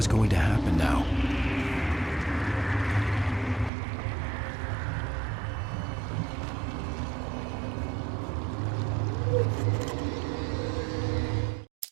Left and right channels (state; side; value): drops out; left; at 3.7 s